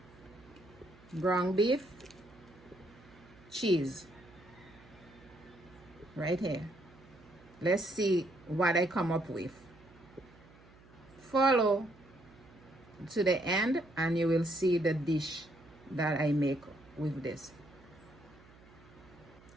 ground beef, cheese. Right here. Let's see what I come up with. Follow to the end and you will see the dish that I make with this.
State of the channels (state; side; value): noise; right; hum, 24 dB below the sound